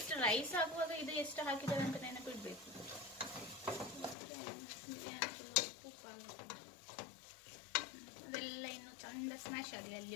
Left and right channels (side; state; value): right; drops out; at 4.2 s